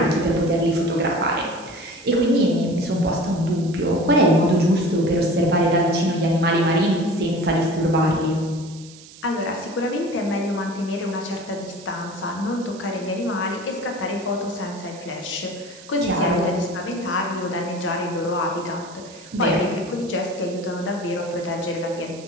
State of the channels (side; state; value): right; noise; hiss, 20 dB below the sound